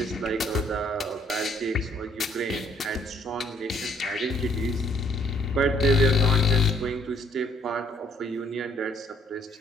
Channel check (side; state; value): both; normal; correlation 0.63